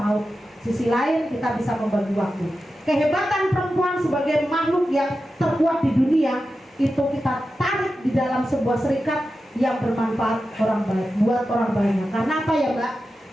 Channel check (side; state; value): both; normal; correlation 0.91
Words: sisi lain kita bisa membagi waktu. Kehebatan perempuan sebagai makhluk yang terkuat di dunia itu kita tarik di dalam sebuah serikat yang bermanfaat orang banyak, buat orang banyak. Karena apa ya Mbak?